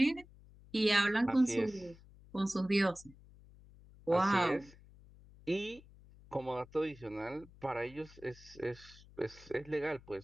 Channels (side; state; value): left; noise; hum, 23 dB below the sound